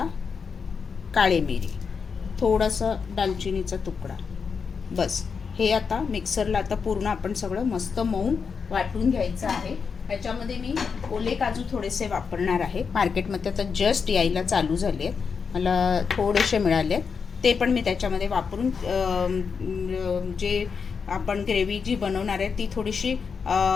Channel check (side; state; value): right; quieter; 5.8 dB